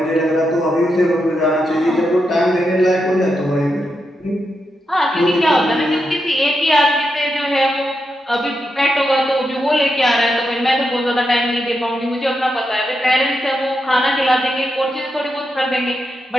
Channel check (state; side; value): normal; both; correlation 0.85